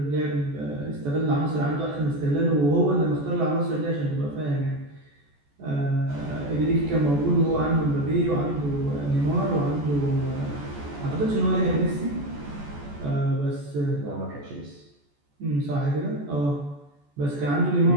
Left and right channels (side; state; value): left; late; 14 ms